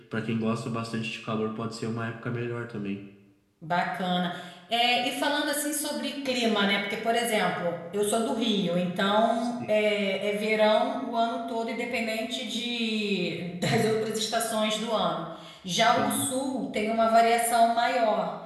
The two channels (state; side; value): identical; both; correlation 1.00